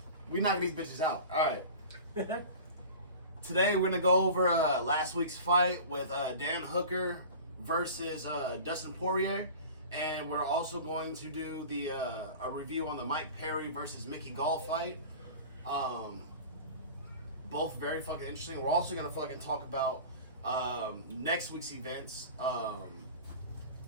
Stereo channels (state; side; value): inverted; both; correlation -0.37